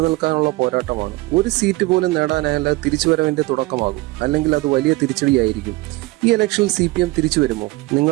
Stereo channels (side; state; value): left; quieter; 21.3 dB